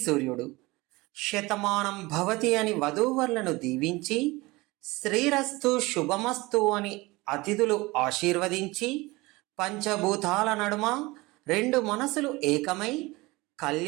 సూర్యుడు, శతమానం భవతి అని వధూవరులను దీవించి, శ్రీరస్తు శుభమస్తు అని అతిథులు ఆశీర్వదించి, పంచభూతాల నడుమ రెండు మనసులు ఏకమై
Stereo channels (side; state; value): left; quieter; 22.2 dB